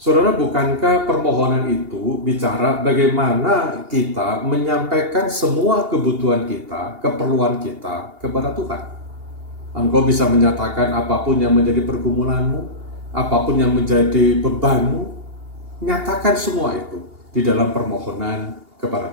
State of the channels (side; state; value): left; late; 2.8 ms